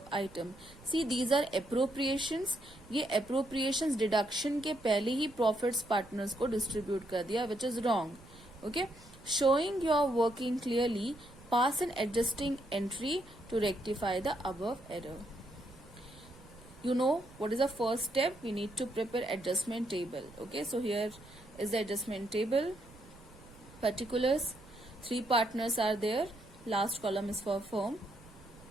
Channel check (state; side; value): noise; right; rumble, 22 dB below the sound